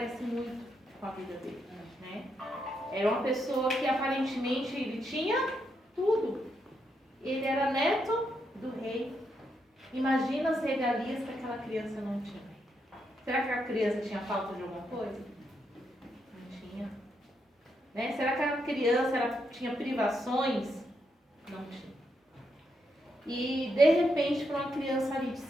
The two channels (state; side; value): normal; both; correlation 0.81